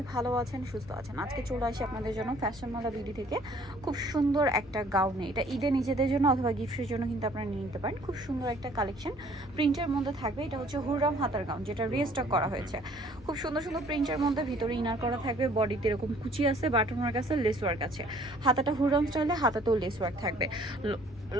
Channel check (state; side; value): normal; both; correlation 0.57